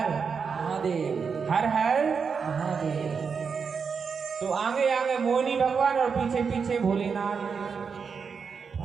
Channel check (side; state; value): left; quieter; 5.8 dB